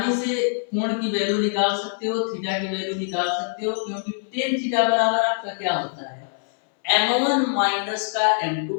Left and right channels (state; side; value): silent; right; 63 dB below the other